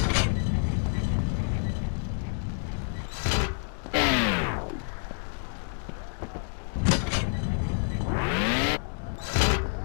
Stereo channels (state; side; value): silent; right; 59 dB below the other